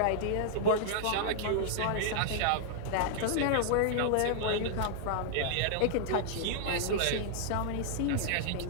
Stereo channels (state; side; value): different; both; correlation -0.01